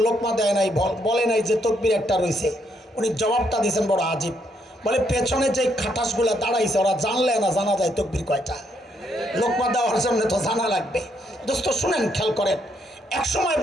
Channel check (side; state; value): both; normal; correlation 0.74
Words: লোকমা দেয় নাই, বলে নাই যে তকবির একটা রয়েছে? উনি জবাবটা দিয়েছেন বড় আজীব, বলে পেছনে যে খাটাসগুলো দাঁড়াইছে ওরা জানলে না জানা যায় তকবির কয়টা। লোকমা দেওয়ার জন্য তো জানা লাগবে। দোস্ত শুনেন, খেয়াল করেন, একসময়